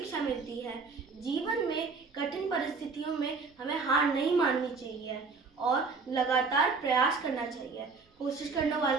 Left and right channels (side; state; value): left; quieter; 4.6 dB